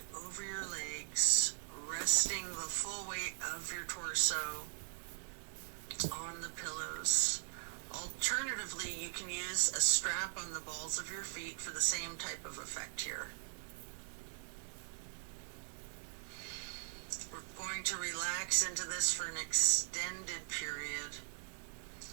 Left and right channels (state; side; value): silent; left; digital silence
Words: over your legs, resting the full weight of your torso on the pillows. Alternatively, you can use a strap on the balls of your feet for the same type of effect here. We're going to relax into this for an extended period.